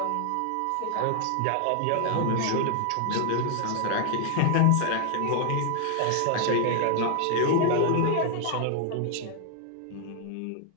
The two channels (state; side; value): different; both; correlation 0.00